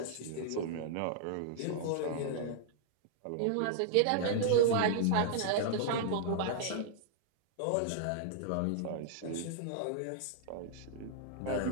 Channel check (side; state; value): both; different; correlation -0.01